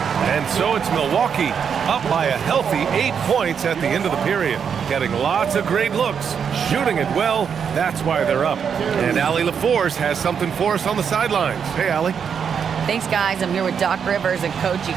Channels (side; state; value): left; quieter; 7.1 dB